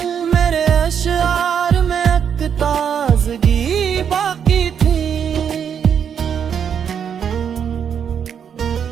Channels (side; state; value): left; quieter; 7.9 dB